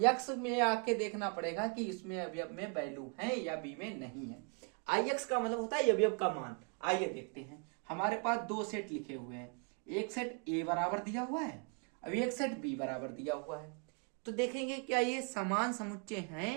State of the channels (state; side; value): quieter; left; 37.3 dB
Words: में आके देखना पड़ेगा कि इसमें अवयव में वैल्यू है या बी में नहीं है। आई एक्स का मतलब होता है अवयव का मान। आइए देखते हैं, हमारे पास दो सेट लिखे हुए हैं, एक सेट ए बराबर दिया हुआ है, अब एक सेट बी बराबर दिया हुआ है। तो देखेंगे क्या ये समान समुच्चय